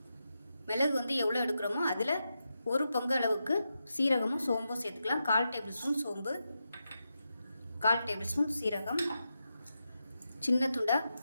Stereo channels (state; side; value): inverted; both; correlation -0.88